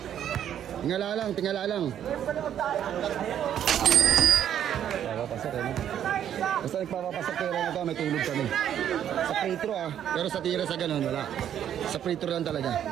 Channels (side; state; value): left; quieter; 10.0 dB